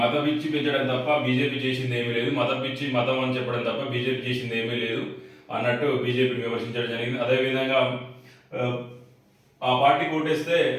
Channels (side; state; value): both; identical; correlation 1.00